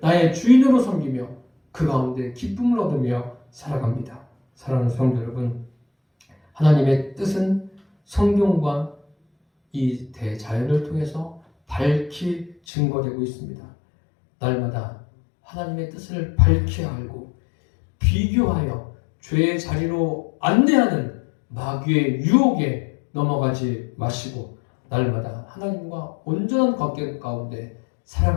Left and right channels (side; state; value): right; drops out; at 12.6 s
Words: 나의 주인으로 섬기며 그 가운데 기쁨을 얻으며 살아갑니다. 사랑하는 성도 여러분, 하나님의 뜻은 성경과 이 대자연을 통해서 밝히 증거되고 있습니다. 날마다 하나님의 뜻을 밝히 알고 비교하여 죄의 자리로 안내하는 마귀의 유혹에 넘어가지 마시고 날마다 하나님과 온전한 관계 가운데